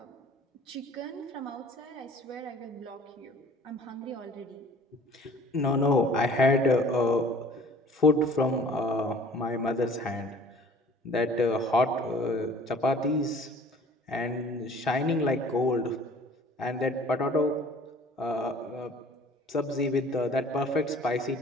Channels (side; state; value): both; normal; correlation 0.50